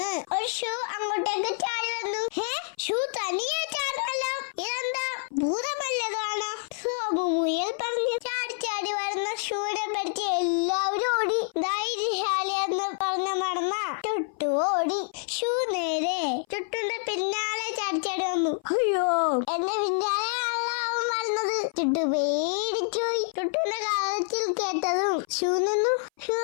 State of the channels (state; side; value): silent; right; 57 dB below the other